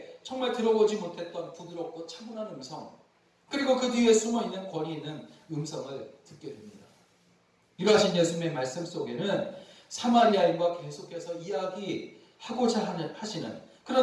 정말 들어보지 못했던 부드럽고 차분한 음성, 그리고 그 뒤에 숨어있는 권위 있는 음성을 듣게 됩니다. 이러하신 예수님의 말씀 속에는 사마리아인과 계속해서 이야기하고자 하시는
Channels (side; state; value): both; identical; correlation 1.00